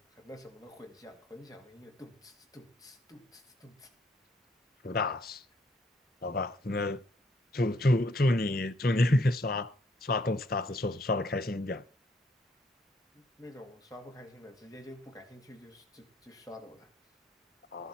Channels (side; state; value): both; normal; correlation 0.68